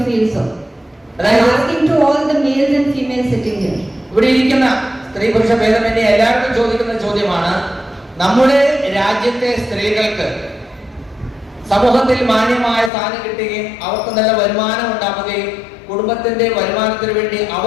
feel so? I am asking to all the males and females sitting here. ഇവിടെ ഇരിക്കുന്ന സ്ത്രീ പുരുഷ ഭേദമന്യേ എല്ലാവർക്കും ചോദിക്കുന്ന ചോദ്യമാണ്, നമ്മുടെ രാജ്യത്തെ സ്ത്രീകൾക്ക് സമൂഹത്തിൽ മാന്യമായ സ്ഥാനം കിട്ടുകയും അവർക്ക് നല്ല വരുമാനം ഉണ്ടാവുകയും കുടുംബത്തിന്റെ വരുമാനത്തിന് വേണ്ടി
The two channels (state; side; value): drops out; right; at 12.9 s